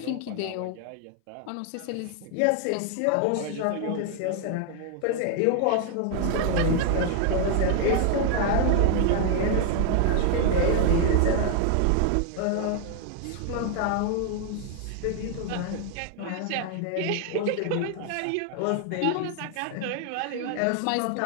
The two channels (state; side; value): different; both; correlation 0.00